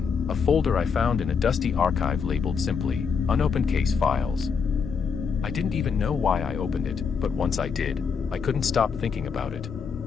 a folder I found in a dusty archive labeled simply, Unopened Case Files. I didn't even know why I opened it, but once I did, I couldn't stop thinking about it.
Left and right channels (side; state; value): right; quieter; 5.9 dB